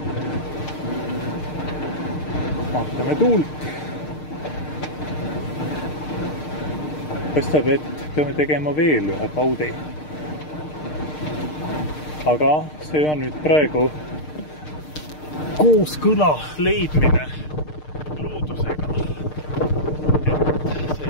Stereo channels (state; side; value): late; right; 6.6 ms